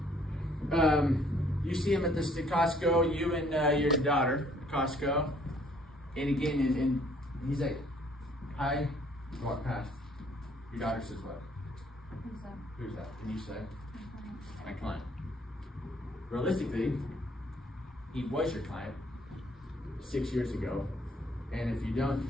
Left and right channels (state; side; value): normal; both; correlation 0.62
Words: Nelson. You see him at the Costco, you and your daughter, Costco. And again, and he's like, hi, walk past. Your daughter says what? Who's that? And you say, my client. Realistically, he was your client 6 years ago. And if you don't